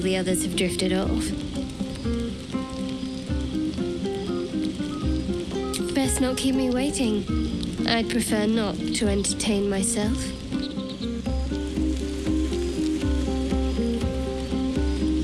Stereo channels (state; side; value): identical; both; correlation 1.00